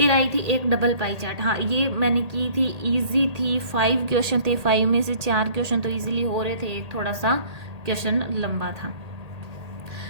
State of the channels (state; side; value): late; left; 1.8 ms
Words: आई थी एक डबल पाई चार्ट। हाँ ये मैंने की थी, इजी थी, 5 क्वेश्चन थे, 5 में से 4 क्वेश्चन तो इजीली हो रहे थे, एक थोड़ा सा क्वेश्चन लंबा था।